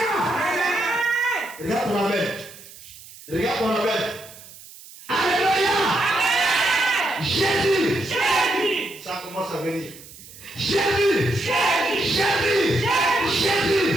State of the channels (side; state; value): right; noise; hiss, 19 dB below the sound